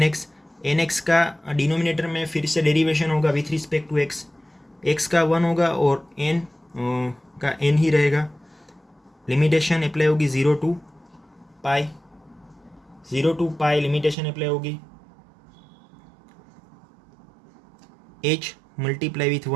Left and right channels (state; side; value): drops out; left; at 14.2 s